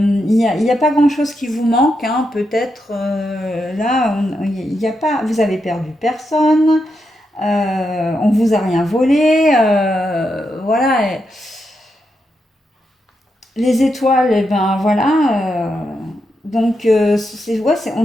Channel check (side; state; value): both; normal; correlation 0.84